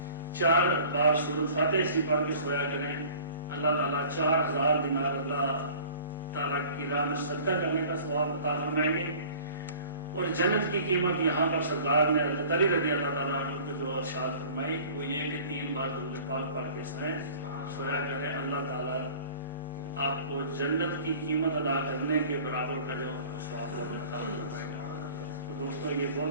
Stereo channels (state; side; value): inverted; both; correlation -0.47